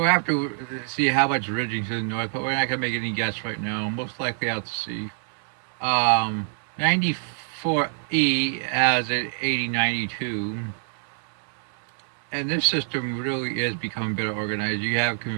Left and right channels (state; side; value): silent; left; 61 dB below the other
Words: have to see how much ridging to the north, but we're not gonna make any guess right now. Most likely out to sea. 94E has an 8092. And this system really is becoming better organized. You have